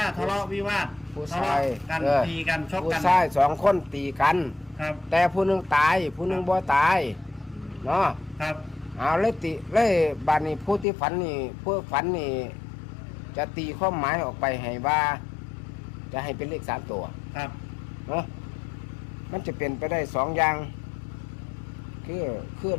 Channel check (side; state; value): right; drops out; at 10.9 s